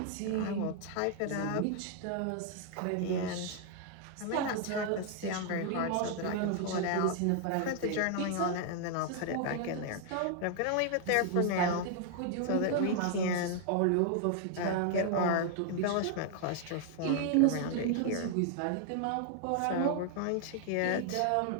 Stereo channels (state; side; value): different; both; correlation 0.00